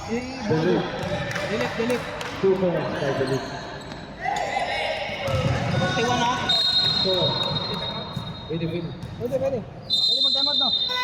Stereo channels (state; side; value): identical; both; correlation 1.00